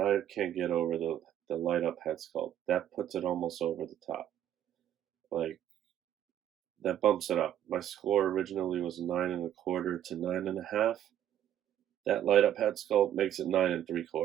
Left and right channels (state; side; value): quieter; left; 11.0 dB